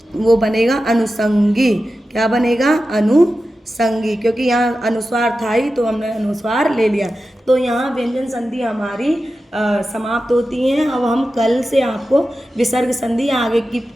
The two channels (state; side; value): normal; both; correlation 0.92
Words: वो बनेगा अनुसंगी। क्या बनेगा, अनुसंगी, क्योंकि यहाँ अनुस्वार था ही तो हमने अनुस्वार ले लिया। तो यहाँ व्यंजन संधि हमारी समाप्त होती हैं। अब हम कल से आपको विसर्ग संधि आगे की